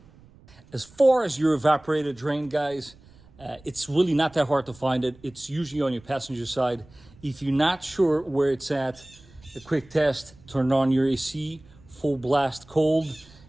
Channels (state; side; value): noise; right; rumble, 25 dB below the sound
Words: As far as your evaporator drain, guys, it's really not that hard to find it. It's usually on your passenger side. If you're not sure where it's at, a quick test, turn on your AC, full blast cold,